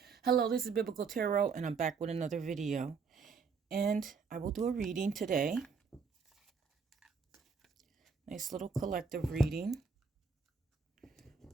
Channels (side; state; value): left; quieter; 5.3 dB